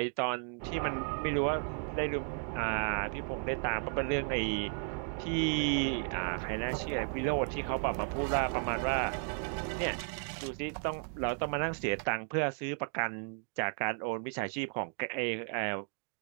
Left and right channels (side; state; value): left; silent; 55 dB below the other